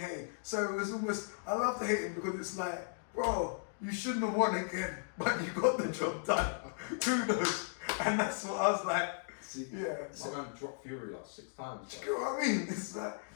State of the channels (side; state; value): right; silent; digital silence